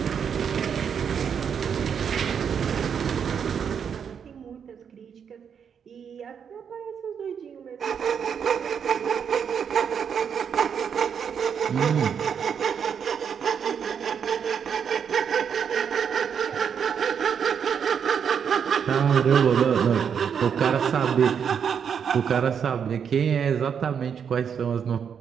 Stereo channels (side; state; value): left; quieter; 7.4 dB